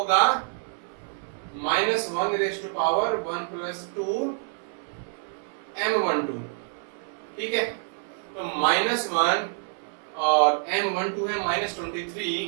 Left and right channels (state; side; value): silent; left; 60 dB below the other